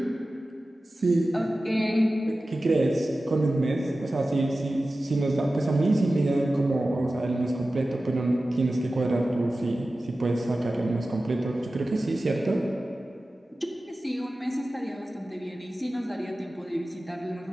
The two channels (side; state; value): both; normal; correlation 0.95